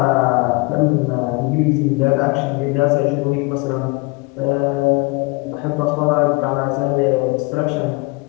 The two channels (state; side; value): quieter; right; 26.5 dB